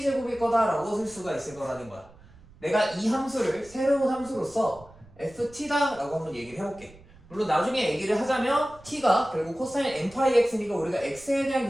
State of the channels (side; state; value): right; noise; rumble, 24 dB below the sound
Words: 제곱일 거다라고 쓸 수가 있을 거라는 거야. 내가 이 함수를 새로운 함수로서 ft다 라고 한번 얘기를 해볼게. 물론 나중에 얘기를 하자면 t가 결국 코사인 n파이 x니까 우리가 x에